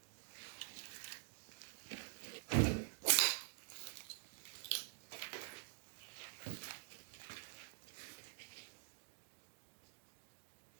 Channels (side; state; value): left; silent; digital silence